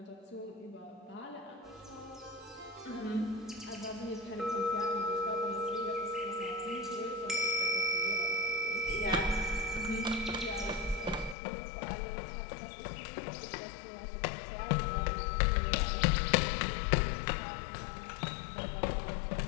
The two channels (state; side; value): drops out; right; at 11.4 s